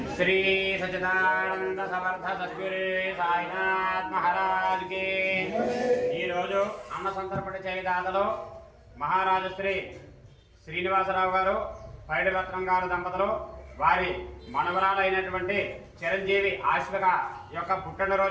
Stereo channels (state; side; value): identical; both; correlation 1.00